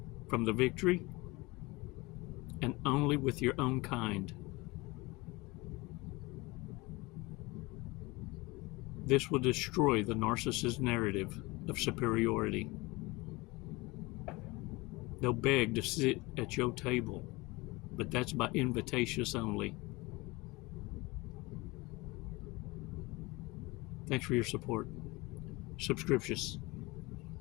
from the victory and only with your own kind. This will destroy the narcissist narrative of superiority. They'll beg to sit at your table, but that's by invitations only. Thanks for your support. Subscriptions.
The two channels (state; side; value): quieter; right; 23.3 dB